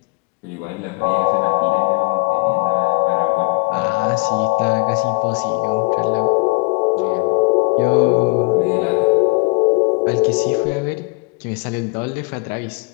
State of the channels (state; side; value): quieter; right; 29.5 dB